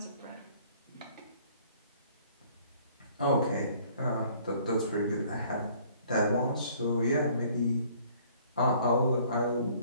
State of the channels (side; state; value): both; inverted; correlation -0.58